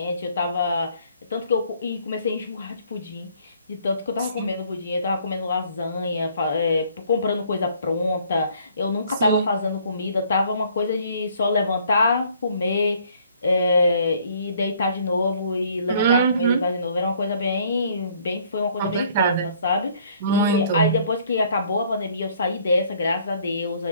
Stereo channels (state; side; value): inverted; both; correlation -0.61